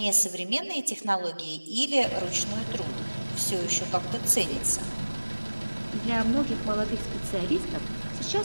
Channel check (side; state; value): both; inverted; correlation -1.00